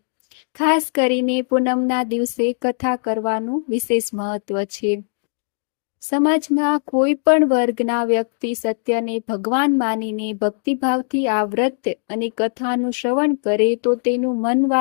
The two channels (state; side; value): silent; right; digital silence